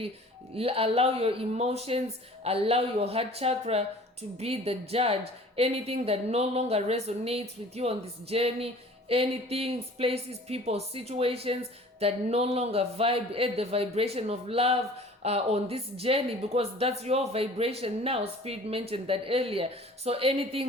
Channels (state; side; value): normal; both; correlation 0.47